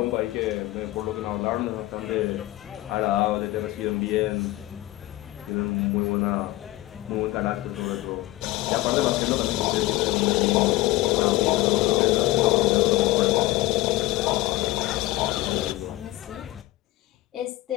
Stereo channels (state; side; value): quieter; right; 17.7 dB